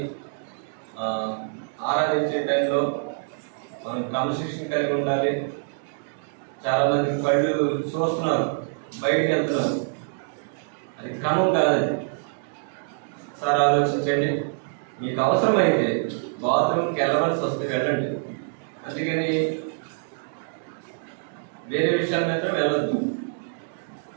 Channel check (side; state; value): left; silent; digital silence